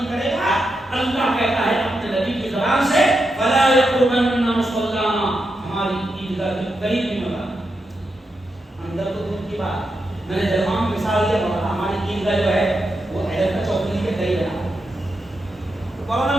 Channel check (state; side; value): normal; both; correlation 0.86